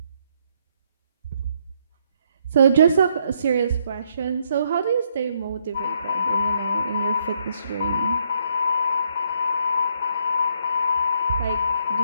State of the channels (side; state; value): both; inverted; correlation -0.72